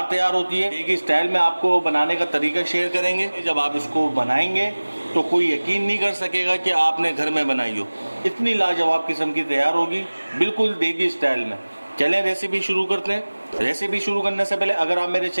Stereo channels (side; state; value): both; inverted; correlation -1.00